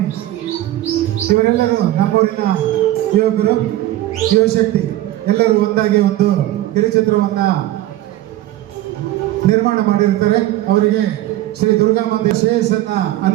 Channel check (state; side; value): quieter; left; 14.8 dB